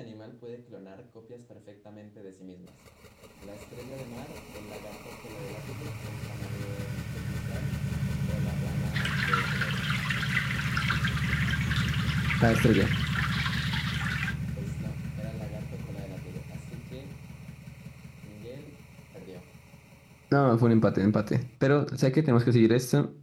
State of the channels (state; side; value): identical; both; correlation 1.00